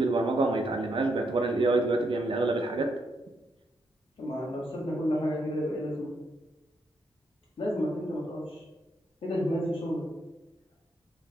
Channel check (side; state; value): both; normal; correlation 0.78